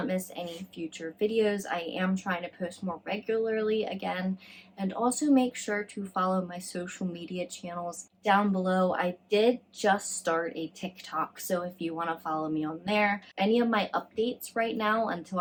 miss any future videos. I am trying to post more regularly again, and also make sure to follow my social media channels down below. I did just start a TikTok, so if you want to follow me on there, any of my updates right now until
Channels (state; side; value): identical; both; correlation 1.00